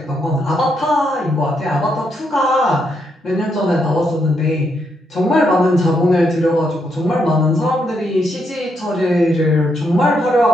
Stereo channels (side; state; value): both; normal; correlation 0.78